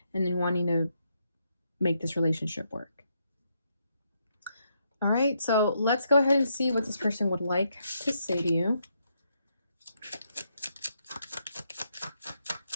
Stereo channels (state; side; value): inverted; both; correlation -0.78